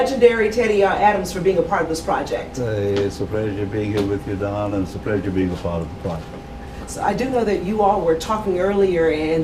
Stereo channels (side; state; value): both; identical; correlation 1.00